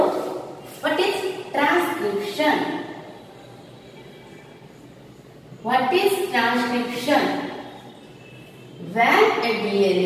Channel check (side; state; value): both; identical; correlation 1.00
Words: what is transcription. What is transcription? When a